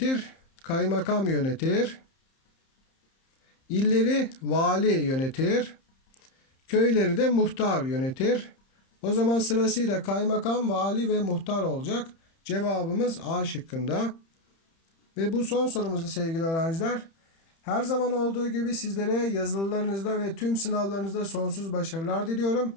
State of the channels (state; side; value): late; right; 30 ms